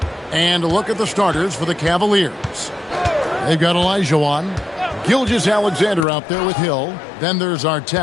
And a look at the starters for the Cavaliers. They've got Olajuwon, Gilgeous-Alexander out there with Hill. Then there's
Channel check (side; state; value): right; drops out; at 6.1 s